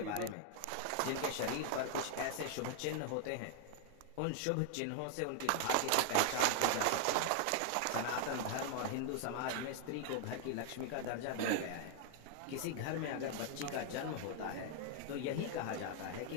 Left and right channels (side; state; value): both; different; correlation 0.00